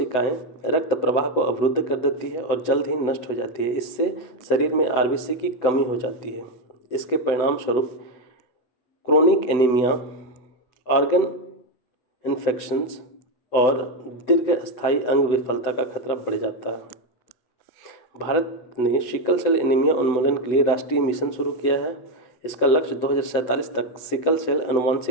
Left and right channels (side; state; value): right; late; 8.0 ms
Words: रक्त प्रवाह को अवरुद्ध कर देती है और जल्द ही नष्ट हो जाती है। इससे शरीर में आरबीसी की कमी हो जाती है। इसके परिणाम स्वरूप क्रोनिक एनीमिया, ऑर्गन इन्फेक्शंस और दीर्घस्थायी अंग विफलता का खतरा बढ़ जाता है। भारत ने सिकल सेल एनीमिया उन्मूलन के लिए राष्ट्रीय मिशन शुरू किया है। इसका लक्ष्य 2047 तक सिकल सेल